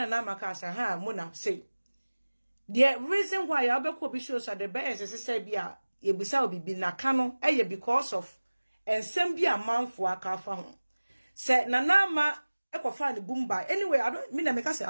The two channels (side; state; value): both; inverted; correlation -1.00